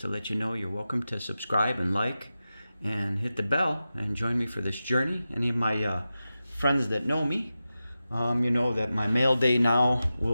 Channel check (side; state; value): both; inverted; correlation -0.93